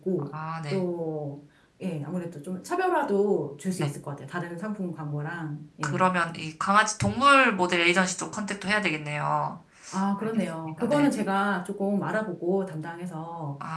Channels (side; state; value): both; identical; correlation 1.00